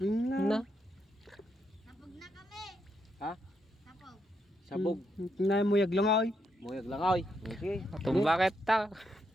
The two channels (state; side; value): normal; both; correlation 0.80